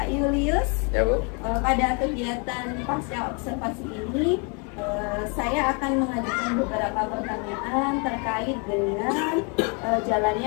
Julius, Ya Bu. Pada kegiatan pasca observasi ini saya akan mengajukan beberapa pertanyaan terkait dengan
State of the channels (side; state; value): right; quieter; 35.2 dB